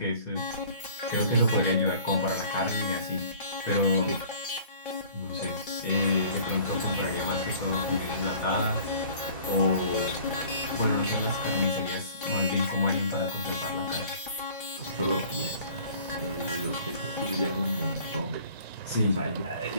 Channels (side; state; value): both; inverted; correlation -0.50